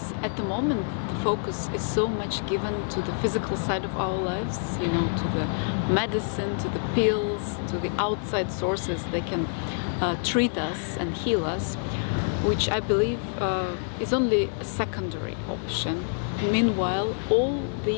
at the moment, the focus is so much given to the physical side of our lives, you know, to the medicine, to the pills, to the outside sources that can treat us and heal us, which I believe is only a secondary option. Meanwhile, all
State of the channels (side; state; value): right; silent; digital silence